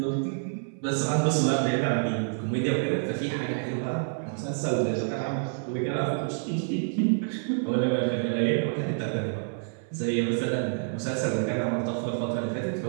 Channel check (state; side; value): silent; left; 59 dB below the other